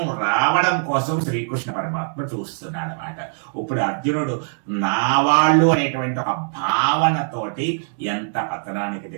రావడం కోసం శ్రీకృష్ణ పరమాత్మ చూస్తున్నాడు అన్నమాట. ఇప్పుడు అర్జునుడు నా వాళ్ళు అనేటువంటి ఒక భావనతోటి ఎంత పతనానికి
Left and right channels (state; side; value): silent; left; digital silence